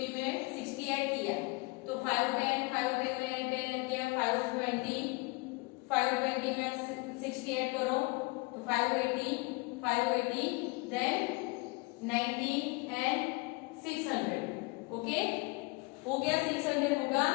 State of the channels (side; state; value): right; quieter; 26.9 dB